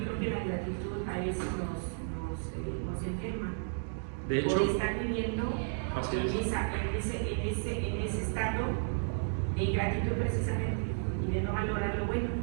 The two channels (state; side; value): silent; left; digital silence